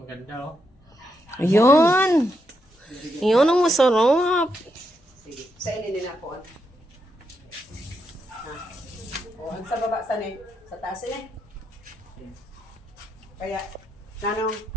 oh. Ayun. Ayun ang masarap. Sige, sa ininin ako. O, ang sa baba, sa taas Kaya, nanong,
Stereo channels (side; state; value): both; normal; correlation 0.81